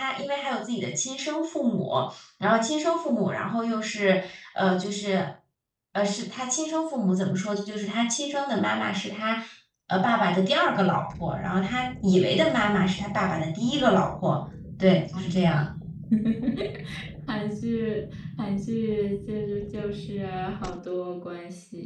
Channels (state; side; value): identical; both; correlation 1.00